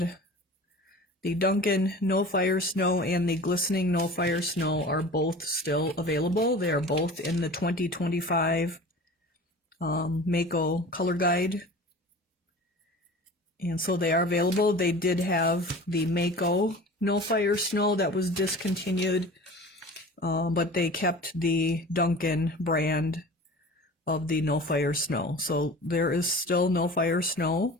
the Duncan No Fire Snow and the Glistening No Fire Snow are both still available. They are both in the 2025 Mako color guide. And so they are available. They did have the Mako No Fire Snow that was discontinued, but they kept the Duncan brand of the no fire snow. So there is still no fire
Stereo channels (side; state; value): both; normal; correlation 0.39